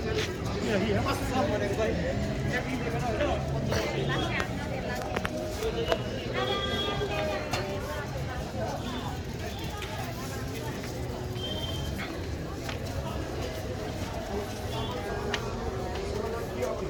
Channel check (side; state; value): both; identical; correlation 1.00